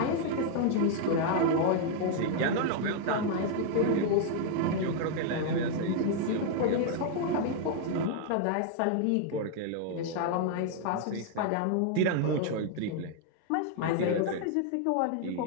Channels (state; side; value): different; both; correlation 0.00